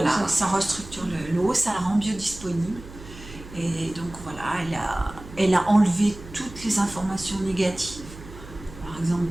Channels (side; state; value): right; noise; hum, 16 dB below the sound